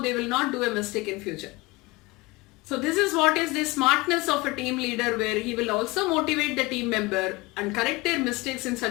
they will not do a mistake in future. So this is what is the smartness of a team leader, where he will also motivate the team member and correct their mistakes in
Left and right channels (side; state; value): right; quieter; 22.8 dB